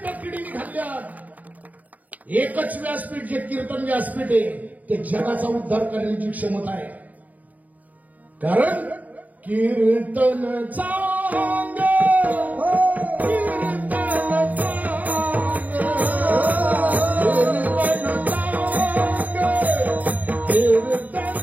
किडीने खाल्ल्यात, एकच व्यासपीठ जे कीर्तन व्यासपीठ आहे ते जगाचा उद्धार करण्याची क्षमता आहे. कारण कीर्तन चांग,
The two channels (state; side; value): late; left; 0.076 ms